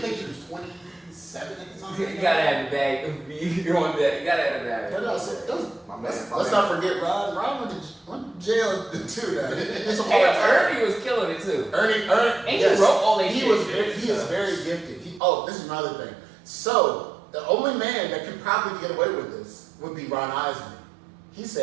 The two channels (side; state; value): left; drops out; at 15.2 s